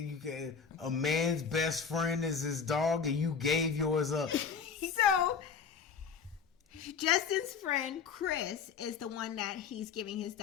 you can. A man's best friend is his dog, and you gave yours up. So, Justin's friend Chris is the one that he's giving his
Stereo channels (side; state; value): right; quieter; 6.2 dB